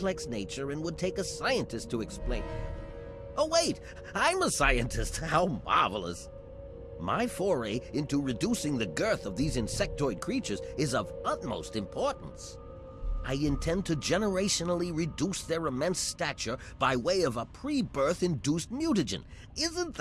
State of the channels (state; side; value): identical; both; correlation 1.00